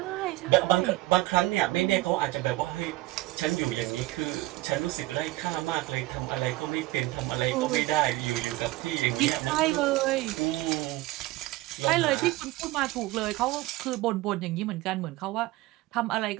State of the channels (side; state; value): left; quieter; 19.0 dB